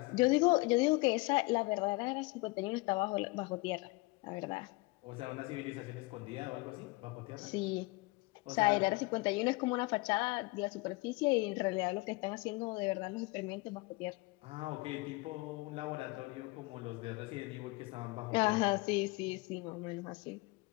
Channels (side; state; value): right; quieter; 24.0 dB